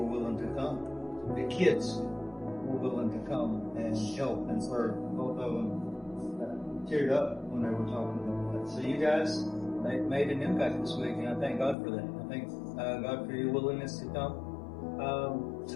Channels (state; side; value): drops out; right; at 11.8 s